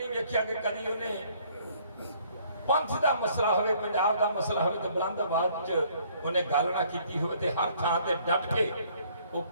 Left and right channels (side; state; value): both; inverted; correlation -0.62